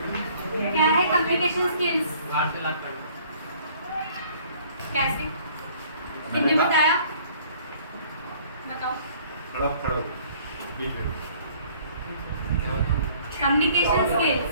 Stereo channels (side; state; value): both; inverted; correlation -0.56